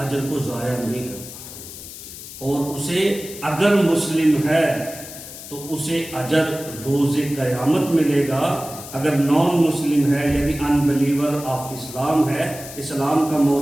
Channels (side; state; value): left; noise; hiss, 13 dB below the sound